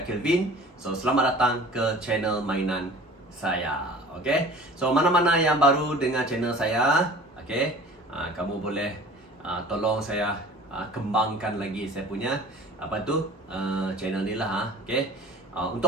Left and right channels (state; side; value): normal; both; correlation 0.44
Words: Kelvin. So selamat datang ke channel mainan saya. Okay, so mana-mana yang baru dengan channel saya, okay, kamu boleh tolong saya kembangkan lagi saya punya channel ni lah. Okay.